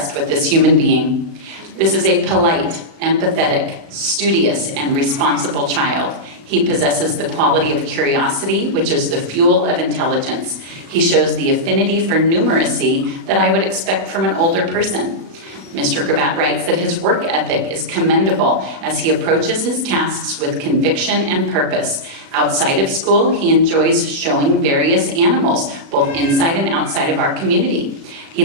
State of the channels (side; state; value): left; late; 36 ms